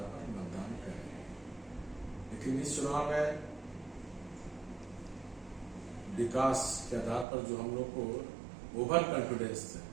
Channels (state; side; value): drops out; left; at 7.2 s